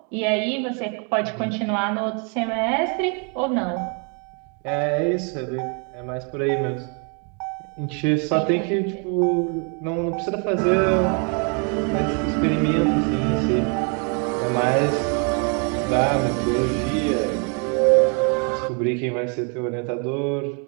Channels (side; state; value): left; quieter; 37.7 dB